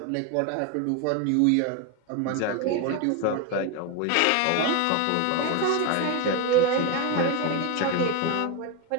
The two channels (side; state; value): both; different; correlation 0.02